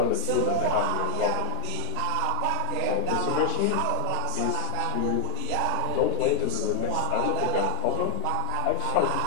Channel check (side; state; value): both; different; correlation 0.00